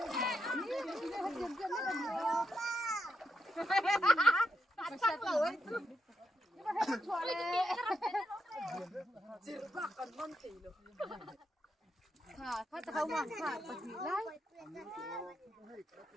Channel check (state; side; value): normal; both; correlation 0.82